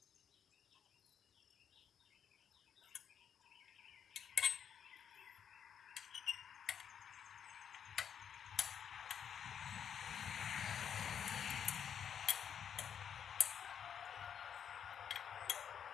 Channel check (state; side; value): quieter; right; 8.2 dB